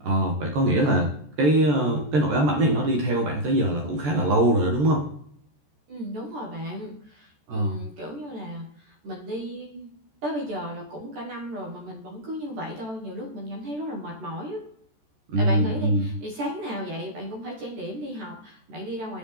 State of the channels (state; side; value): late; left; 14 ms